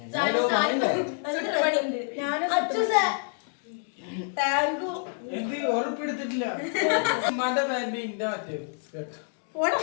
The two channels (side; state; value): right; silent; 60 dB below the other